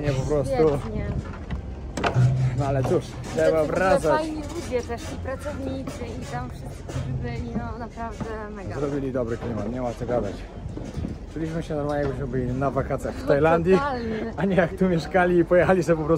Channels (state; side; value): identical; both; correlation 1.00